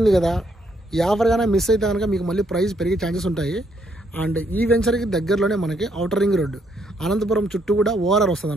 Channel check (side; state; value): both; normal; correlation 0.72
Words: కదా, ఈ ఆఫర్ కానీ మిస్ అయితే కనుక మీకు మళ్ళీ ప్రైస్ పెరిగే ఛాన్సెస్ ఉంటాయి. అండ్ ఈ వెంచర్కి దగ్గరలోనే మనకి ఔటర్ రింగ్ రోడ్డు, అనంతపురం చుట్టూ కూడా ORR వస్తుంది